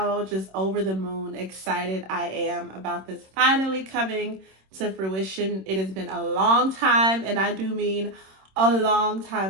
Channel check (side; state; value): left; late; 26 ms